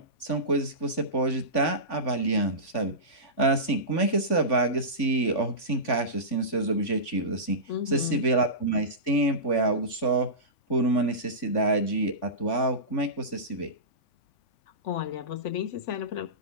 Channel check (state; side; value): late; right; 3.5 ms